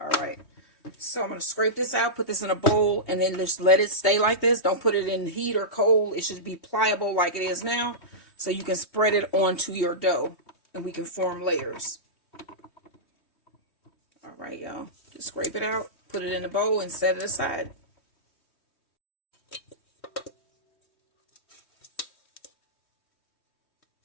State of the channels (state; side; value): late; right; 3.2 ms